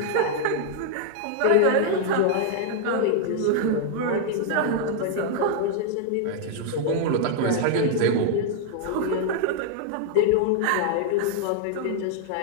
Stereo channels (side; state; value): both; different; correlation 0.00